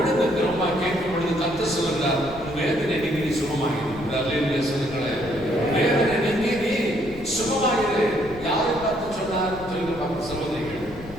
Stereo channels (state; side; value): noise; left; rumble, 16 dB below the sound